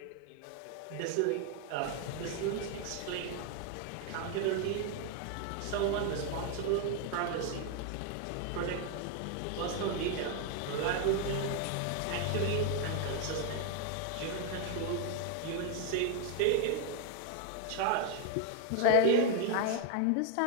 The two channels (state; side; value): different; both; correlation 0.00